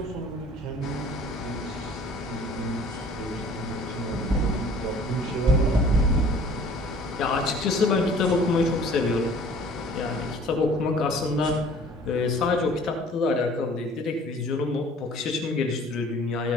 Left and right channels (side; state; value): both; normal; correlation 0.51